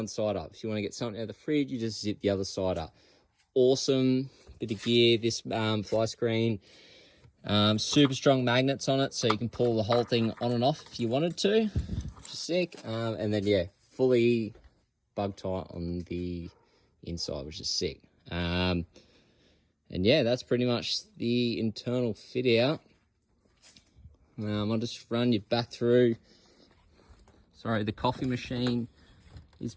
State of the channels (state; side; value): identical; both; correlation 1.00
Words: side up. If you want to get something out of the fridge, you just zip the other side up. Awesome bit of gear, this fly screen. Super strong magnets on it, so you can pull the whole thing on and off if you wanted to, which is sick. And then, yeah, fully bug tight on the inside, which is sick. And yeah, that's pretty much the internal fit out. I'll just run you back through. Sorry, the coffee machine is